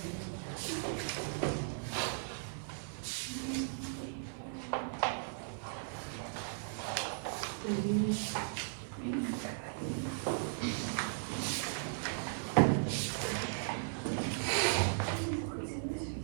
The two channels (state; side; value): silent; left; digital silence